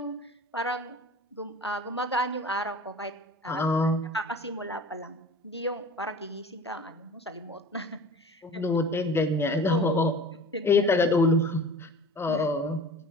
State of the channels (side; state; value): both; normal; correlation 0.42